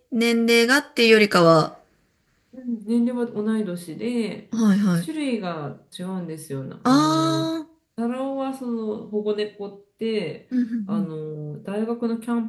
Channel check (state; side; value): identical; both; correlation 1.00